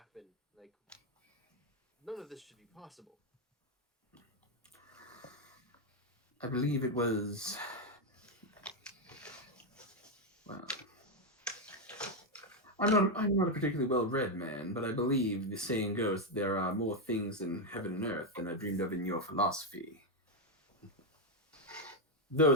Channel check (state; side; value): normal; both; correlation 0.04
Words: Like, none of this should be possible. I believe it was. Well, I'm not a particularly well-read man, but I believe the saying goes that there are more things in heaven and earth than I dreamed of in your philosophy.